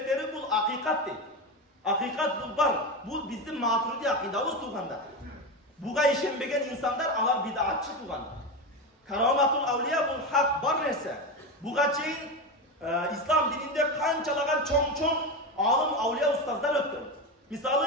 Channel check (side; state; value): both; normal; correlation 0.18